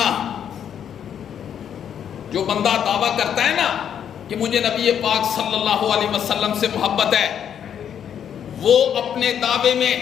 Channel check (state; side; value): quieter; right; 8.9 dB